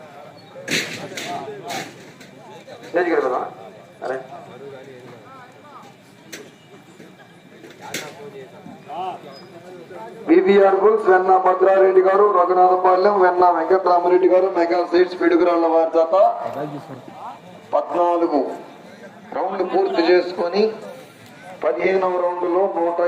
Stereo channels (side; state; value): both; identical; correlation 1.00